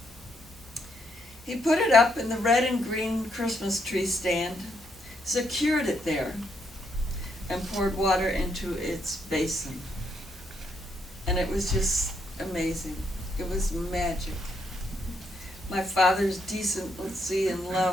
He put it up in the red and green Christmas tree stand, secured it there, and poured water into its basin. And it was just amazing. It was magic. My father's decency and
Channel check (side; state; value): both; normal; correlation 0.76